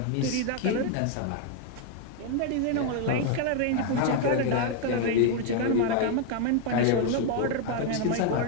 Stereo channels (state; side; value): different; both; correlation 0.01